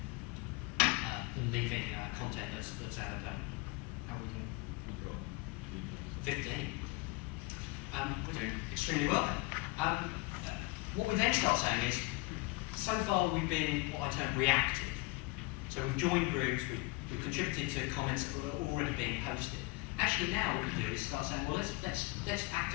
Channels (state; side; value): quieter; right; 23.3 dB